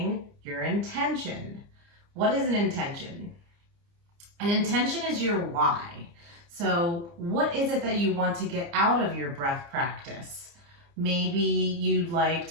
your intention. What is an intention? An intention is your why. So what is it that you want to get out of your breath practice? Maybe you'd like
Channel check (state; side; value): late; left; 29 ms